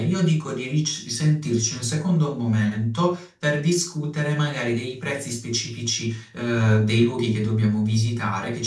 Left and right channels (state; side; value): identical; both; correlation 1.00